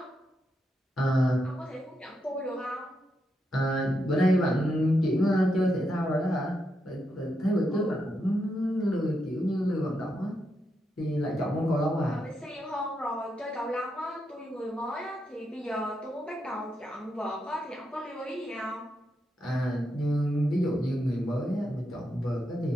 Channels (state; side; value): normal; both; correlation 0.83